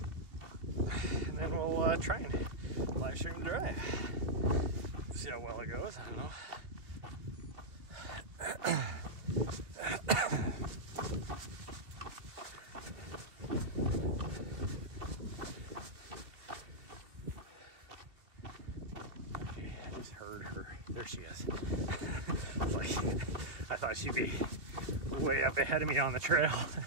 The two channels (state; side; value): late; left; 2.8 ms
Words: And then we'll try and live stream the drive. See how well it goes. I don't know. There she is. I thought she'd be way up ahead of me on the trail.